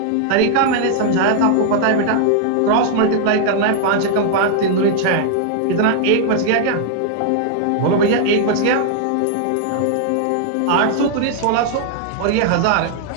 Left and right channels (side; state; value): both; different; correlation -0.01